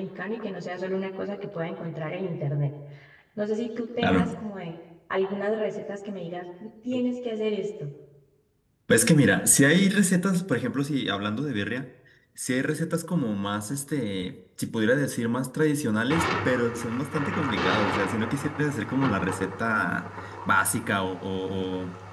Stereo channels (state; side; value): identical; both; correlation 1.00